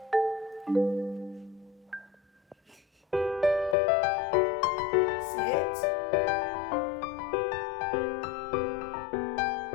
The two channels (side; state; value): right; drops out; at 3.8 s